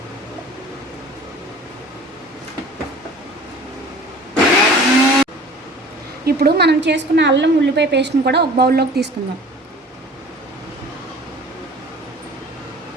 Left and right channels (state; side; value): normal; both; correlation 0.45